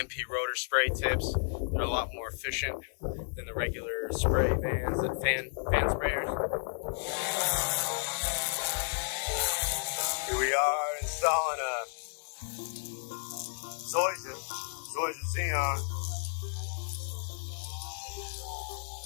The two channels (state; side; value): silent; right; digital silence